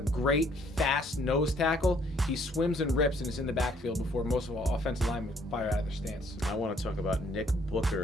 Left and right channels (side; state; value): both; normal; correlation 0.64